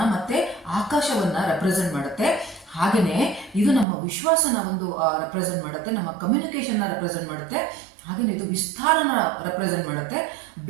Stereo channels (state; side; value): drops out; left; at 3.9 s